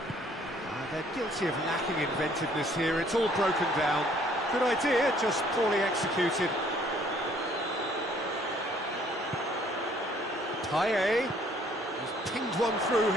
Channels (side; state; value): both; normal; correlation 0.61